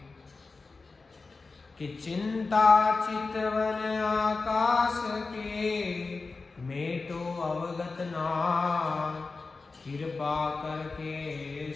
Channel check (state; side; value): quieter; right; 4.0 dB